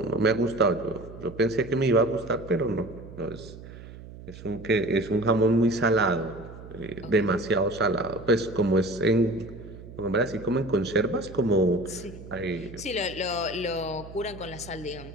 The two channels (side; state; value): right; noise; hum, 15 dB below the sound